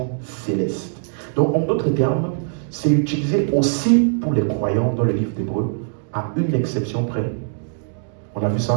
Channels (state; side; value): silent; left; digital silence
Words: céleste. Donc, en d'autres termes, c'est utilisé aussi pour les croyants dans le livre d'Hébreu, à une exception près. On a vu